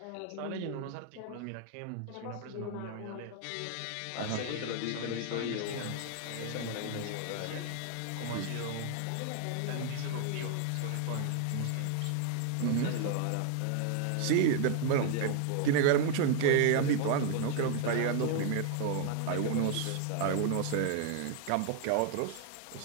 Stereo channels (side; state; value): both; different; correlation 0.00